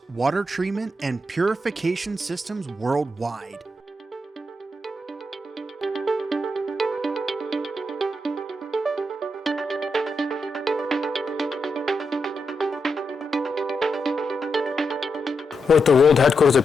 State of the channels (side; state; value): both; normal; correlation 0.84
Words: water treatment, and purification systems worldwide. We're at the world headquarters